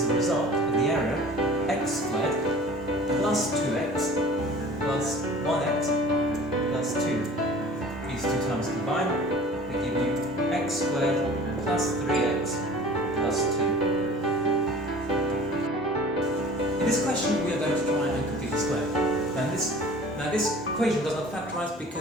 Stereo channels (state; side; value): normal; both; correlation 0.44